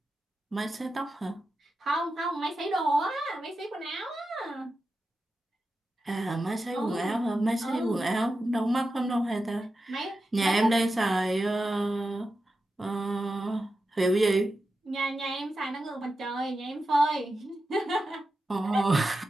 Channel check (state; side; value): normal; both; correlation 0.90